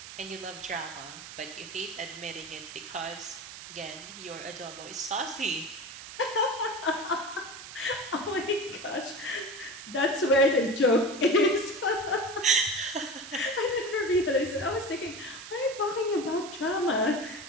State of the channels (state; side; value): noise; right; hiss, 13 dB below the sound